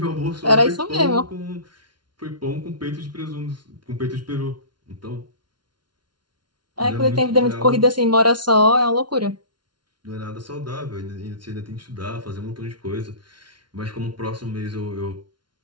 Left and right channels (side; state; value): left; late; 0.71 ms